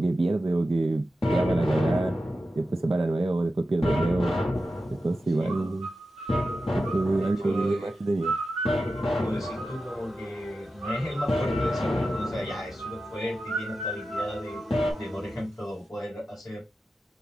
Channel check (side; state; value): both; normal; correlation 0.92